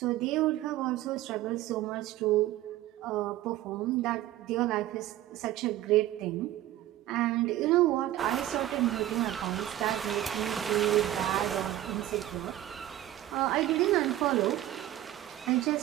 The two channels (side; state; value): left; quieter; 14.0 dB